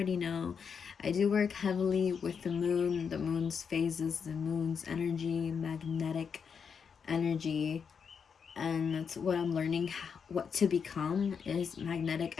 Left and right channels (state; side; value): quieter; right; 6.4 dB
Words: know, I do work heavily with the moon's phases, the moon's energy, magnetic energy, and that's what I'm learning what to become is magnetic